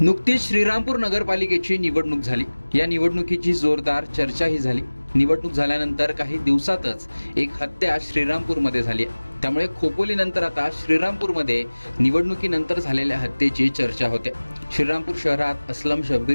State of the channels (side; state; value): both; inverted; correlation -1.00